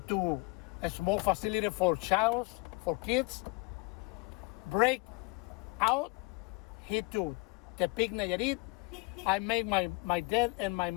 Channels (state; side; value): quieter; right; 26.7 dB